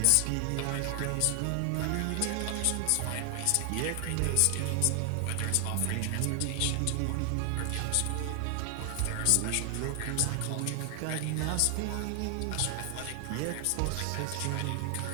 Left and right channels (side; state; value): both; different; correlation 0.00